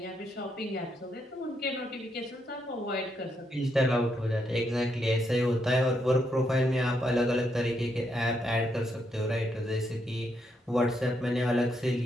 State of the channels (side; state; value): both; normal; correlation 0.78